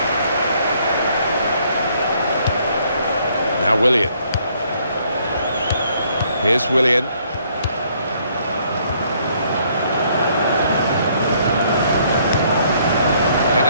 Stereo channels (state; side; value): inverted; both; correlation -0.66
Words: Now Willian. Here's Willian.